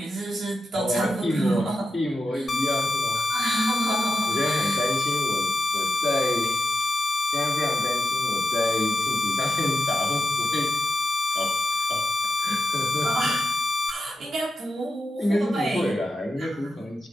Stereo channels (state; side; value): normal; both; correlation 0.87